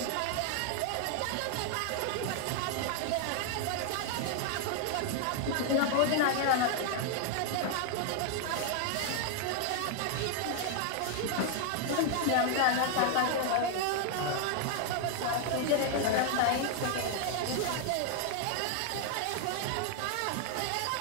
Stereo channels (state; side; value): different; both; correlation 0.00